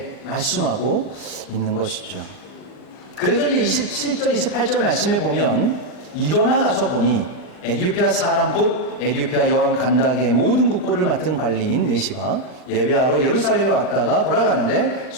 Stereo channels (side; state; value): right; late; 39 ms